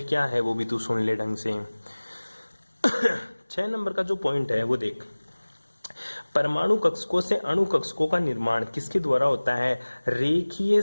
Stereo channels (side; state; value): both; inverted; correlation -1.00